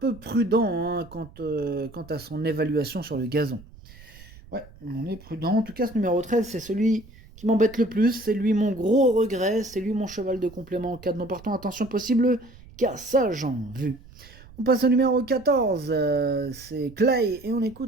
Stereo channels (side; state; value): right; noise; rumble, 21 dB below the sound